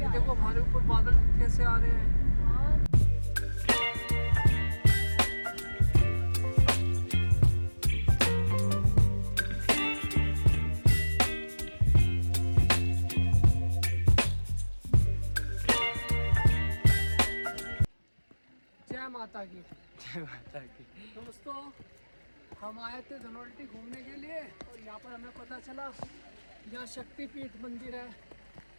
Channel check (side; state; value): both; inverted; correlation -1.00